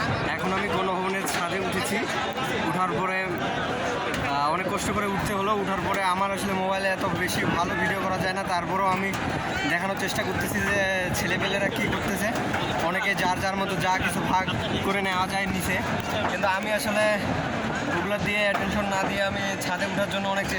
এখন আমি গণভবনের ছাদে উঠেছি। উঠার পরে অনেক কষ্ট করে উঠতে হলো। উঠার পরে আমার আসলে মোবাইলে এত বেশি ভালো ভিডিও করা যায় না, তারপরেও আমি দেখানোর চেষ্টা করতেছি যে ছেলেপেলেরা কী করতেছে। অনেকে যার যার মতো যা কিছু ভাগ করে নেওয়া যায় নিচে, কিন্তু আমি আসলে ওগুলো দিয়ে অ্যাটেনশন না দিয়ে আমি ছাদে ওঠার জন্য অনেক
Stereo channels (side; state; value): both; identical; correlation 1.00